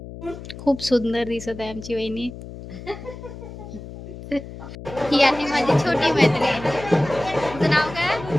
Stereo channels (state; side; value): noise; left; hum, 13 dB below the sound